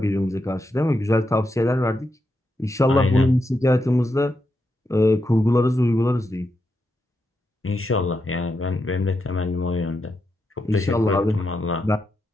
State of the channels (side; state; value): both; normal; correlation 0.84